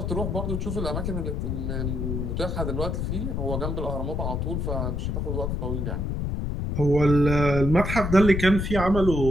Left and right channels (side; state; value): left; noise; rumble, 1 dB below the sound